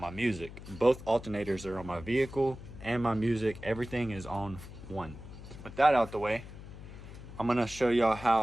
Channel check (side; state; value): left; noise; hum, 14 dB below the sound